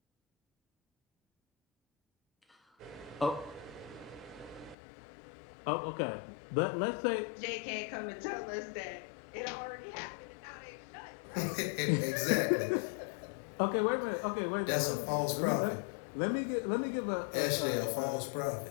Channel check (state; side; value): drops out; right; at 4.8 s